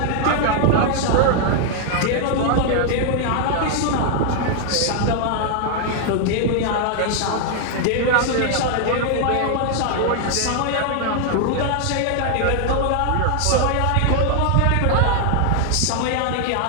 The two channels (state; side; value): different; both; correlation 0.00